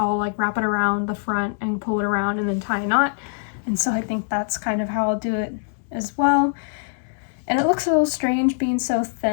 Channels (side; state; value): right; silent; digital silence